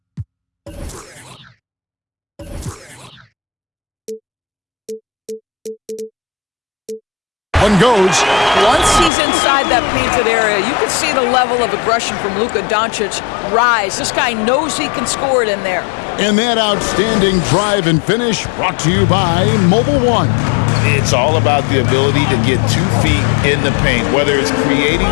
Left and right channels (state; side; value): drops out; right; at 9.1 s